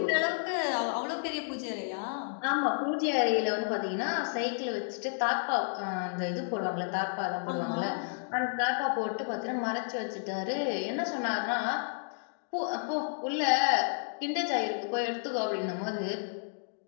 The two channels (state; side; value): silent; right; digital silence